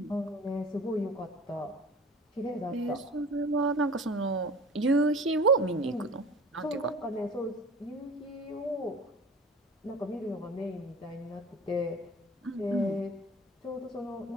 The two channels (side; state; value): both; normal; correlation 0.40